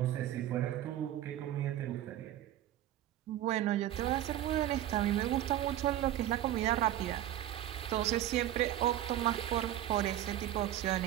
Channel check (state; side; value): quieter; left; 13.0 dB